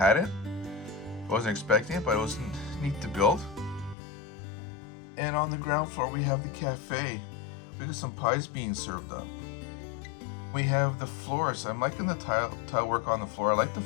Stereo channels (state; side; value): drops out; right; at 4.0 s